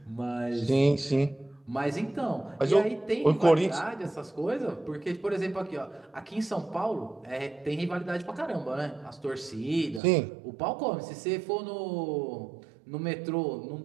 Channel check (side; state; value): left; drops out; at 10.0 s